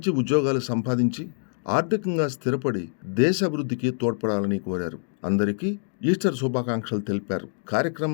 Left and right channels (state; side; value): silent; right; digital silence